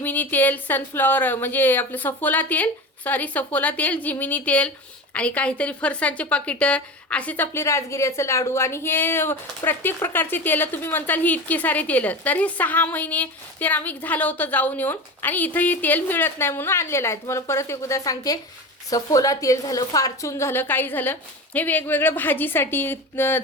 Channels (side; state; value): both; normal; correlation 0.28